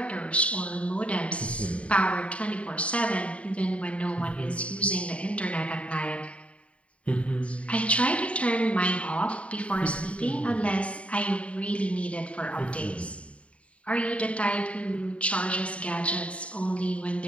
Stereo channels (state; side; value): late; right; 0.063 ms